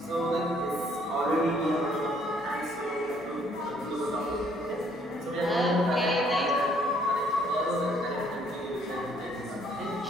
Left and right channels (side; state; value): left; noise; hum, 29 dB below the sound